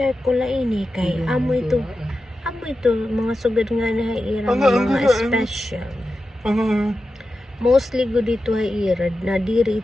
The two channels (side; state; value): both; normal; correlation 0.91